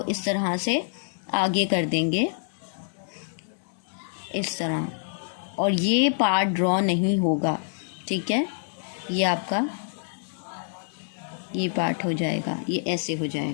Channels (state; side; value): silent; right; digital silence